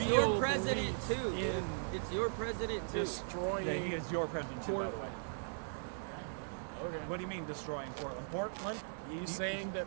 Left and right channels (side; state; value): left; silent; digital silence